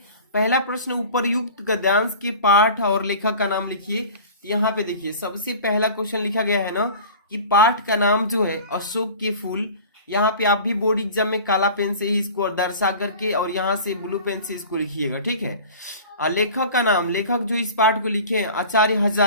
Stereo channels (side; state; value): both; inverted; correlation -0.40